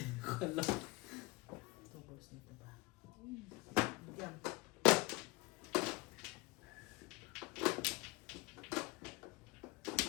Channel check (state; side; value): quieter; right; 23.6 dB